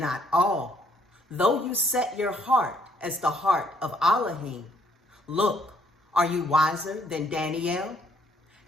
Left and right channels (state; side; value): normal; both; correlation 0.67